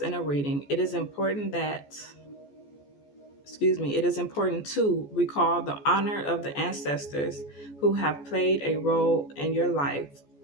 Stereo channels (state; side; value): late; right; 14 ms